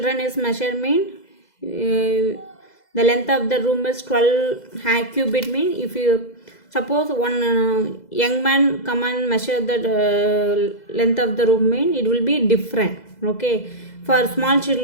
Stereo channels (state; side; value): late; right; 2.0 ms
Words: is measurement, the length of the room is 12 cubit, mean if you suppose one young man come and measure the length of the room, mean it will be different. Okay, for small